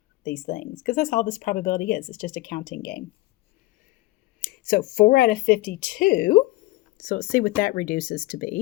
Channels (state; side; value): quieter; right; 19.6 dB